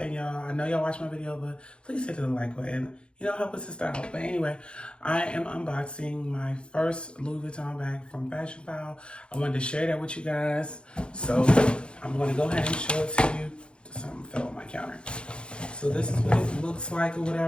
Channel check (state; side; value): late; right; 0.055 ms